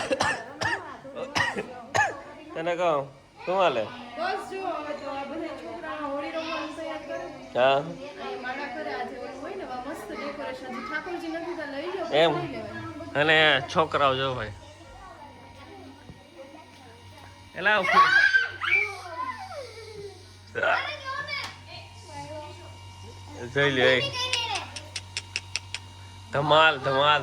તને કહું શું હાલે? હા એમ. અને છોકરાઓ જો ભાઈ એલા જોઈ લે ધમાલ ધમાલ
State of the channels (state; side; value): identical; both; correlation 1.00